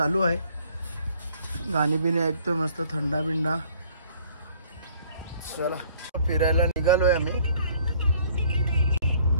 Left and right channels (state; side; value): inverted; both; correlation -0.59